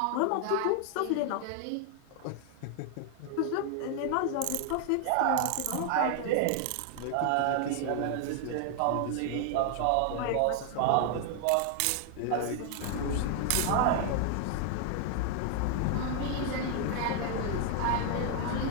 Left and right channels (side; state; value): both; different; correlation 0.00